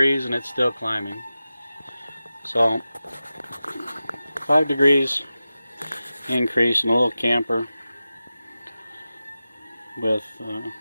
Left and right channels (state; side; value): inverted; both; correlation -0.94